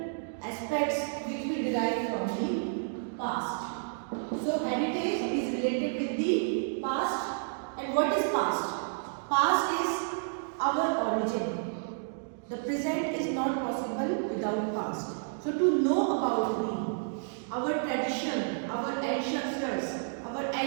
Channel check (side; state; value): left; silent; digital silence